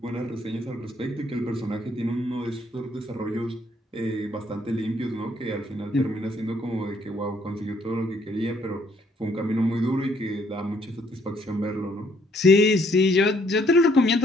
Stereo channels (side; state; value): both; normal; correlation 0.67